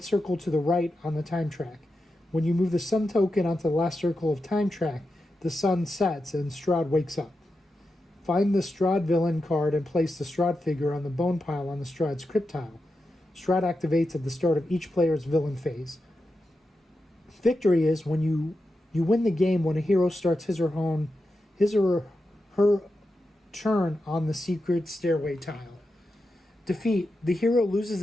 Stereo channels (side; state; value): both; normal; correlation 0.89